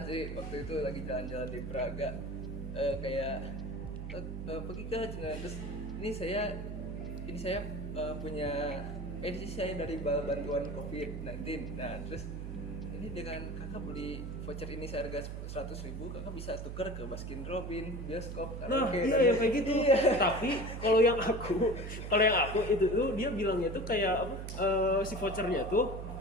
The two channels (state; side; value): noise; right; hum, 6 dB below the sound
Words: sih waktu itu lagi jalan-jalan di Braga, pergi ke terus ini saya punya edisi saya dari bantuan COVID-19. Nah terus ini dengan kakak beli voucher ini seharga 100.000, kakak bisa tuker ke Baskin Robin, bioskop, Nah, karaoke. iya kayak gitu. Tapi kalau yang aku itu tuh dia bilangnya tuh kayak si vouchernya tuh